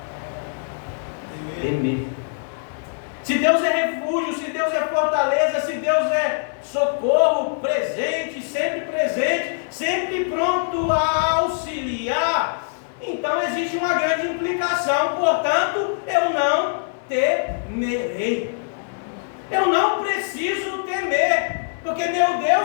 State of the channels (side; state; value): right; silent; digital silence